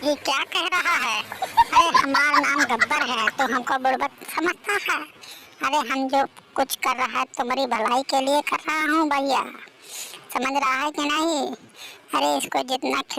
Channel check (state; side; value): identical; both; correlation 1.00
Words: ये क्या कह रहा है? अरे हमारा नाम गब्बर है तो हमको बुड़बक समझता है? अरे हम जो कुछ कर रहा है तुम्हारी भलाई के लिए कर रहा हूँ भैया, समझ रहा है कि नहीं? अरे इसको जितना